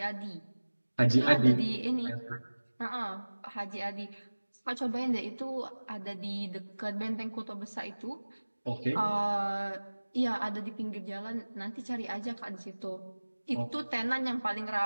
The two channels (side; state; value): both; inverted; correlation -1.00